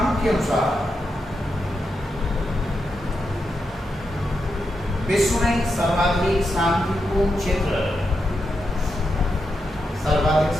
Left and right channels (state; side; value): normal; both; correlation 0.85